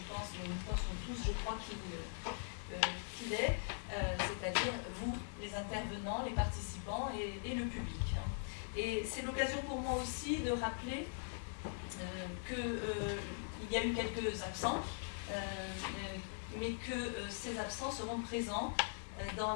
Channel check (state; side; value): silent; right; digital silence